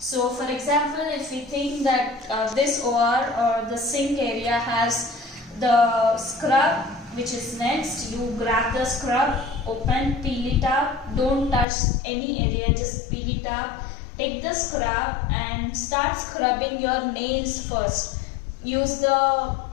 for example, if we think that this OR or the sink area has the scrub which is next, you grab the scrub, open, peel it up, don't touch any area, just peel it up, take the scrub and start scrubbing your nails first. Use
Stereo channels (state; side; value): drops out; right; at 11.7 s